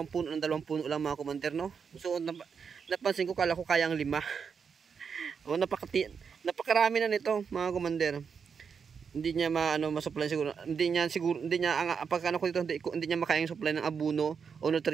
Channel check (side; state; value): left; quieter; 6.3 dB